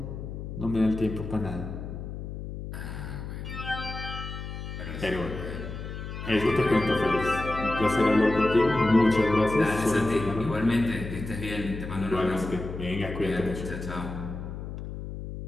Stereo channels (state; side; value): noise; left; hum, 8 dB below the sound